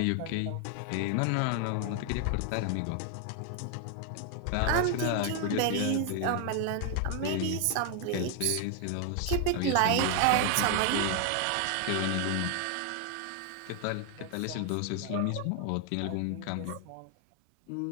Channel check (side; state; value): both; different; correlation 0.00